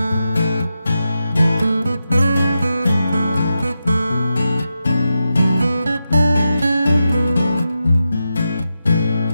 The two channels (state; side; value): inverted; both; correlation -0.89